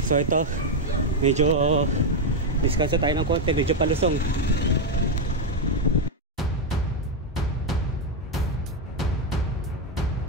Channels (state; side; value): normal; both; correlation 0.04